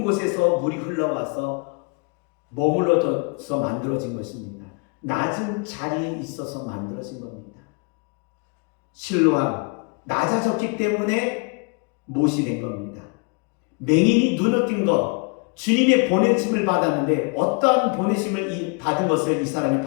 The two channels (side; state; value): right; quieter; 32.7 dB